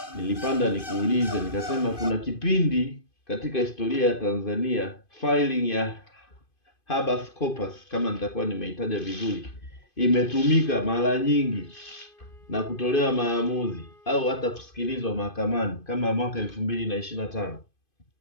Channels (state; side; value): late; right; 2.5 ms